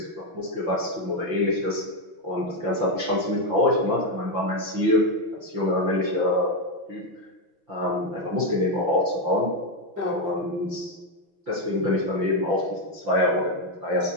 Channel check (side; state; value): left; late; 6.0 ms